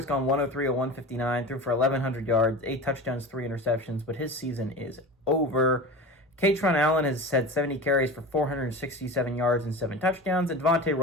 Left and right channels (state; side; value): normal; both; correlation 0.30